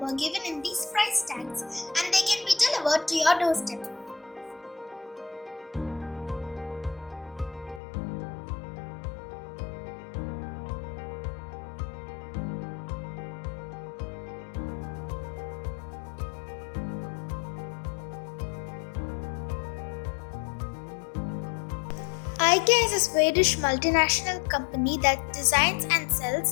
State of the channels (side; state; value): right; drops out; at 7.8 s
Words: given in these price tags and they can be delivered to your doorstep. IKEA is a Swedish multinational company that designs and